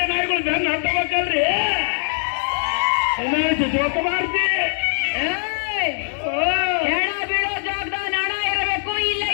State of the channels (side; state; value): right; silent; 65 dB below the other